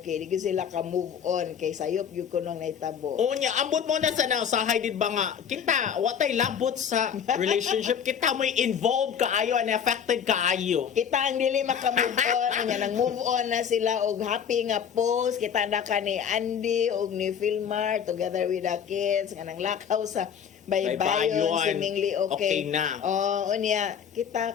Di gyud sila ka-move on. Kay sayop gyud ko nung naitabo. O niya, ambot mo na sa nausahay did ba nga, kita, watay labot sa relationship, kita mo'y involved kaayo and affected kaayo. Kita ang dili maka-move on. Nya nang move on na sila og happy nga post. Kita na ka ni Andy og ni Filmar together with the kids. Nga nang lakaw sa baybayon, Baybayon. seemingly okay. Okay na. Unya,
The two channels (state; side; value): quieter; right; 7.9 dB